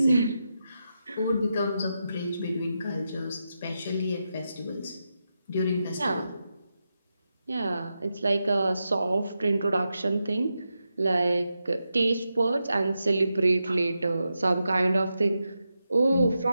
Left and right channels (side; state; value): both; inverted; correlation -0.88